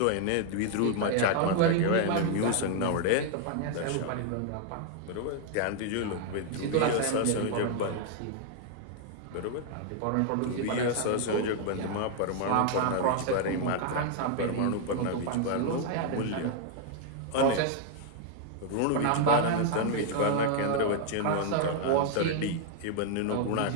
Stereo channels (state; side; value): different; both; correlation 0.00